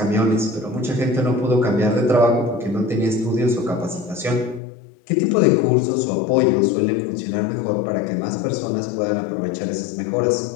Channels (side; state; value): right; drops out; at 4.6 s